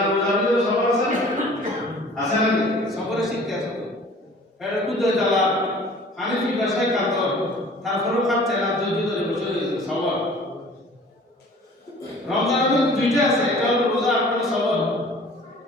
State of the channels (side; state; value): both; normal; correlation 0.48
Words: রোজার মধ্যে সবর আছে না আছে না সবরের শিক্ষা আছে তো এটা কুদে জ্বালা হানিফি ভাষায় কাতর তারপরেও খাচ্ছে না ধৈর্য ধরে বসে রয়েছে সবর। রমজানের মধ্যে দুইটা আছে একটা হলো রোজা আর একটা সবর।